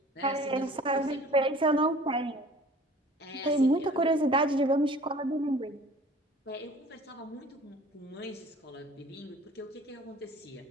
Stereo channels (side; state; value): both; normal; correlation 0.48